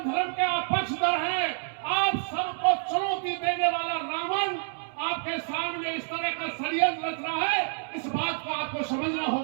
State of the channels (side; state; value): left; silent; 59 dB below the other